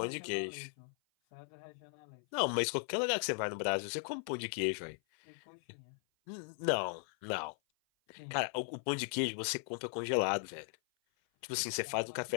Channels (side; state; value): right; silent; 53 dB below the other